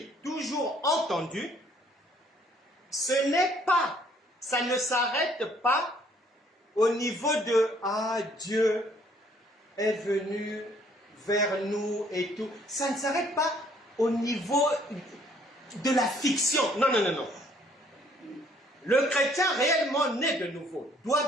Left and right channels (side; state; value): both; normal; correlation 0.62